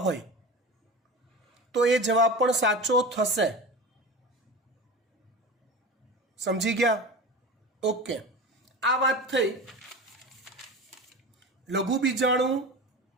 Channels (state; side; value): normal; both; correlation 0.30